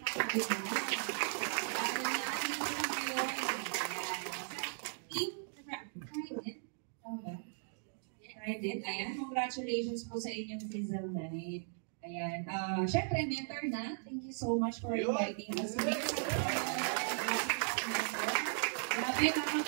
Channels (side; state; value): left; silent; digital silence